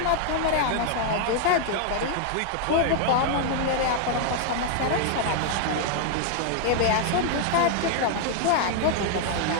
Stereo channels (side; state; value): both; different; correlation 0.00